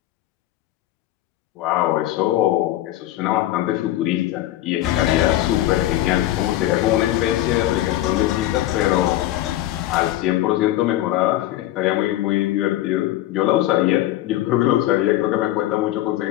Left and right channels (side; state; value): right; quieter; 14.7 dB